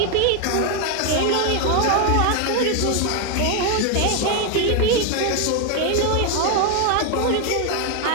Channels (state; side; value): different; both; correlation 0.01